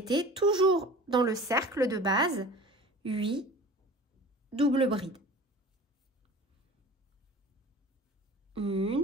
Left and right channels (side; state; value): both; normal; correlation 0.40